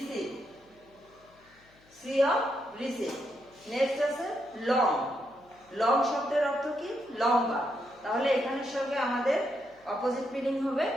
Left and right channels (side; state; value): left; noise; hum, 30 dB below the sound